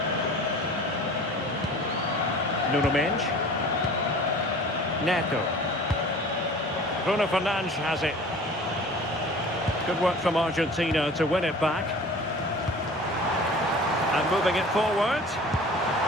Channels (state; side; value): normal; both; correlation 0.43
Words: Nuno Mendes. Neto. Bruno Fernandes has it. Good work from Argentina to win it back. And moving it forward.